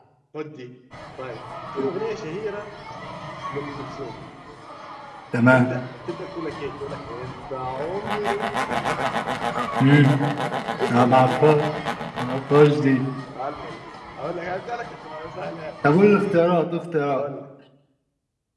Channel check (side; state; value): both; identical; correlation 1.00